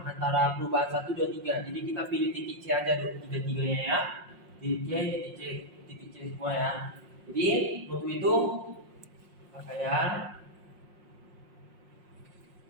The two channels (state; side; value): late; left; 5.6 ms